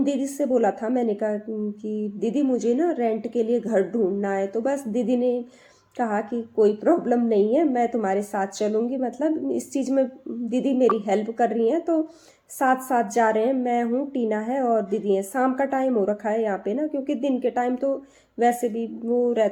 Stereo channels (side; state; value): both; identical; correlation 1.00